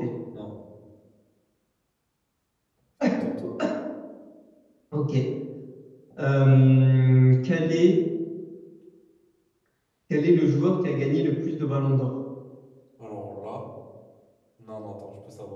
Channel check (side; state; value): both; identical; correlation 1.00